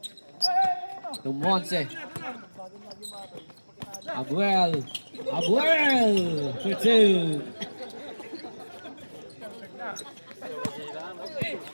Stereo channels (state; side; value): inverted; both; correlation -1.00